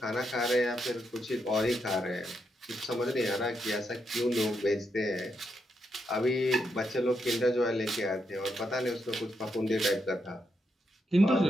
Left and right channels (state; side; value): normal; both; correlation 0.81